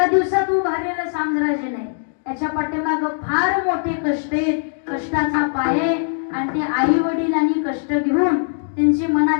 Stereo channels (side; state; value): right; silent; digital silence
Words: दिवसात उभारलेलं साम्राज्य नाही. याच्या पाठीमागं फार मोठे कष्ट आहेत, कष्टाचा पाये. आणि ते आई वडिलांनी कष्ट घेऊन त्यांची